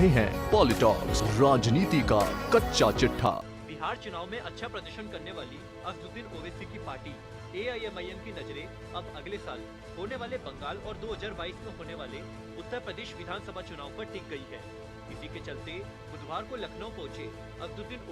हैं पॉलिटॉक्स, राजनीति का कच्चा चिट्ठा। बिहार चुनाव में अच्छा प्रदर्शन करने वाली असदुद्दीन ओवैसी की पार्टी एआईएमआईएम की नजरें अब अगले साल होने वाले बंगाल और 2022 में होने वाले उत्तर प्रदेश विधानसभा चुनाव पर टिक गई है। इसी के चलते बुधवार को लखनऊ पहुंचे असदुद्दीन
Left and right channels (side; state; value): both; identical; correlation 1.00